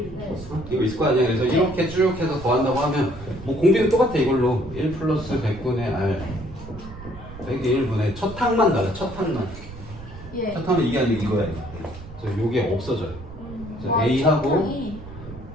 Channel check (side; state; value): right; noise; rumble, 14 dB below the sound